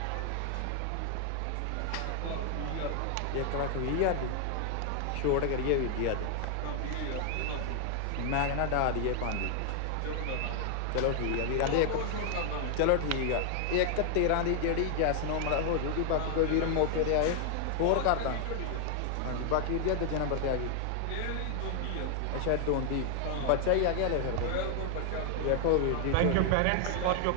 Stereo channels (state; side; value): different; both; correlation 0.00